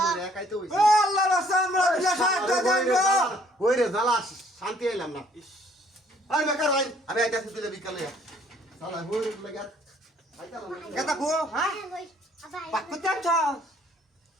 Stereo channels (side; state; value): both; normal; correlation 0.61